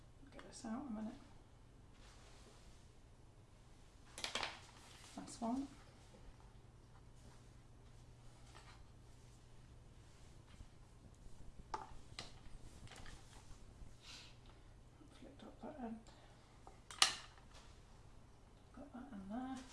Get this out a minute. That's one. Flicked up that end. Got that in there.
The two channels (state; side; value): identical; both; correlation 1.00